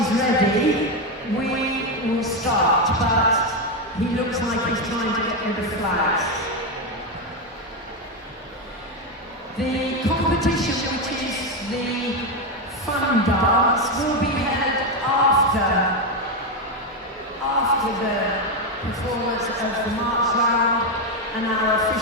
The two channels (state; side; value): normal; both; correlation 0.08